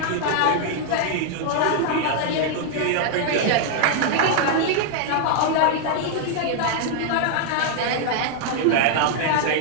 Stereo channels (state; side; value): different; both; correlation 0.00